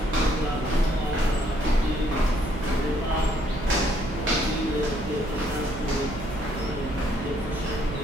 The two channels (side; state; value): right; noise; hum, 9 dB below the sound